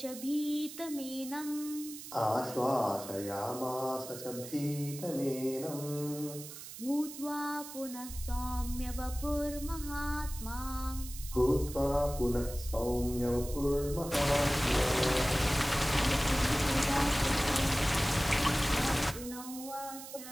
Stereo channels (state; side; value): noise; right; hiss, 12 dB below the sound